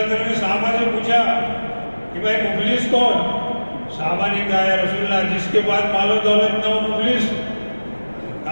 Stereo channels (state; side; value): inverted; both; correlation -1.00